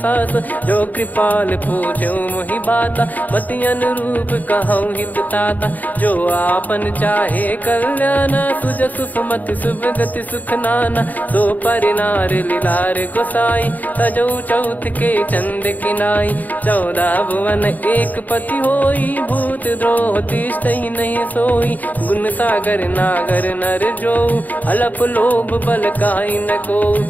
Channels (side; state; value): right; late; 0.081 ms